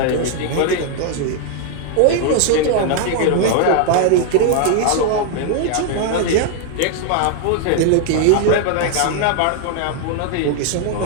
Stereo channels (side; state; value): both; different; correlation 0.00